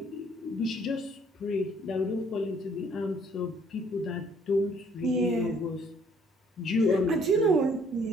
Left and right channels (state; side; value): normal; both; correlation 0.62